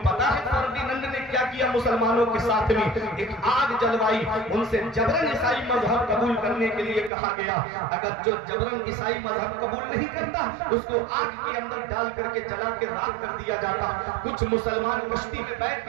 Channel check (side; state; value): left; drops out; at 7.1 s